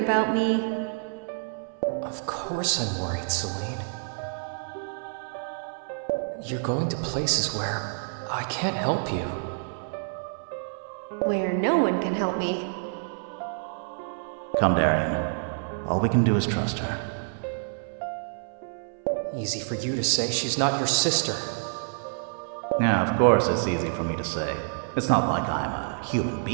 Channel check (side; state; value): left; silent; 60 dB below the other